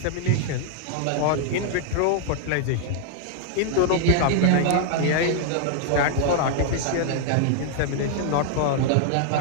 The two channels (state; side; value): different; both; correlation -0.01